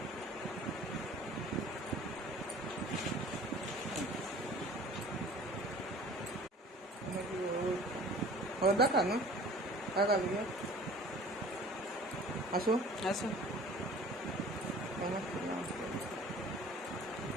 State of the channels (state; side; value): normal; both; correlation 0.47